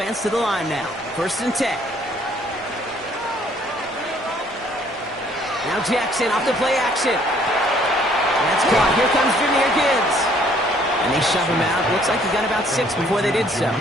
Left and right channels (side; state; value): both; normal; correlation 0.61